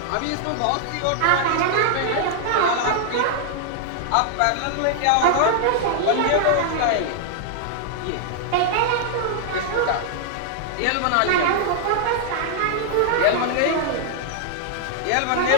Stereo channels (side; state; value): both; different; correlation -0.01